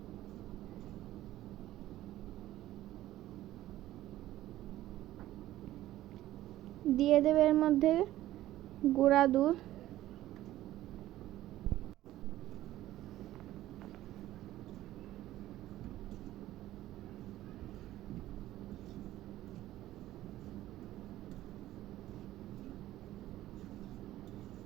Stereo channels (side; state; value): left; quieter; 14.7 dB